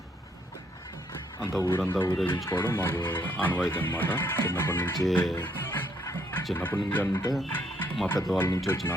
అంత ఊరంతా ఊరేగించుకోవడం మాకు ఆనవాయితీ అనమాట. చిన్నప్పటి నుంచి అంటే మా పెద్దవాళ్ళ నుంచి వచ్చిన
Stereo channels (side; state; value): both; normal; correlation 0.71